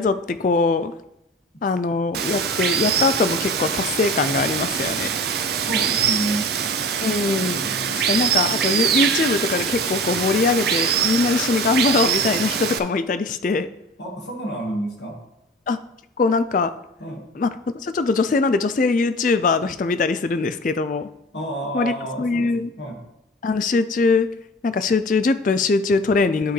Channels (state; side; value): normal; both; correlation 0.37